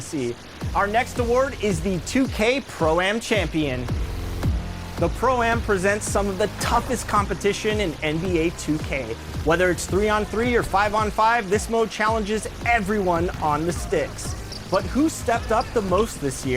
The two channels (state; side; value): identical; both; correlation 1.00